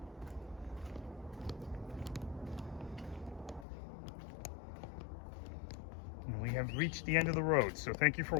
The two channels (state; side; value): drops out; right; at 3.7 s